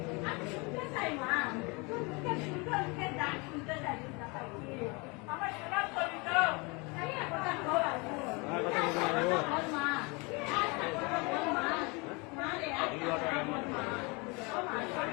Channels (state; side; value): quieter; right; 28.6 dB